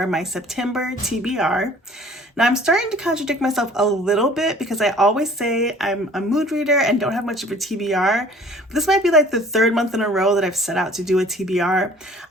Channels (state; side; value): normal; both; correlation 0.51